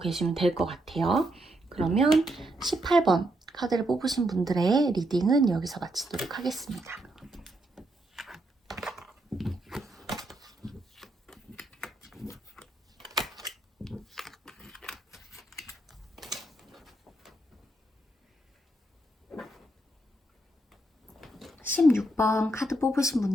될 것 같아요. 그러면 18번 카드를 뽑으신 분들의 리딩은 여기서 마치도록 하겠습니다. (16번) 카드 뽑으신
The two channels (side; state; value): both; normal; correlation 0.79